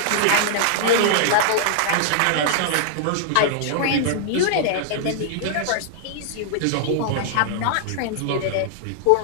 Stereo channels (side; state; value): both; different; correlation -0.01